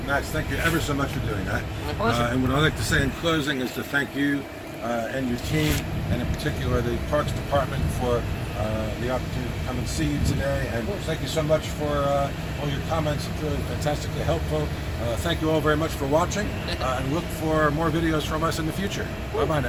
Max, thank you ever so much for doing that. My pleasure. And what I'd like to say in closing is to thank you and your team, and in particular the Parks Department, for the opportunity to come and see you today. And thank you so much for all your comments. It's really fantastically helpful. Thank you all very much for watching, and look for more videos from us in the future. Bye-bye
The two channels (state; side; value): identical; both; correlation 1.00